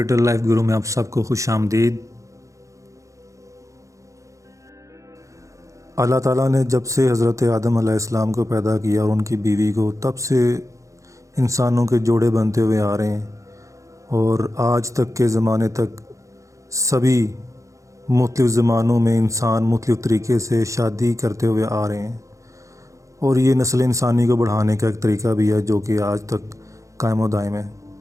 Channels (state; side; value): late; left; 0.15 ms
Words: لائف گرو میں آپ سب کو خوش آمدید۔ اللہ تعالیٰ نے جب سے حضرت آدم علیہ السلام کو پیدا کیا اور ان کی بیوی کو، تب سے انسانوں کے جوڑے بنتے ہوئے آ رہے ہیں اور آج تک کے زمانے تک سبھی مختلف زمانوں میں انسان مختلف طریقے سے شادی کرتے ہوئے آ رہے ہیں، اور یہ نسل انسانی کو بڑھانے کا ایک طریقہ بھی ہے جو کہ آج تک قائم و دائم ہے۔